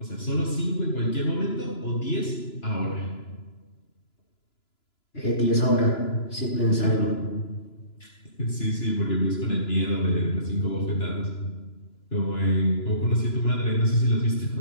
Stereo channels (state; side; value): late; right; 2.9 ms